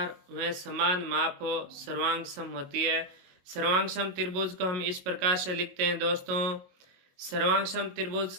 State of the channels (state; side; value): late; left; 22 ms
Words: व समान माप हो सर्वांग सम होती है। सर्वांग सम त्रिभुज को हम इस प्रकार से लिखते हैं दोस्तों। सर्वांग सम त्रिभुज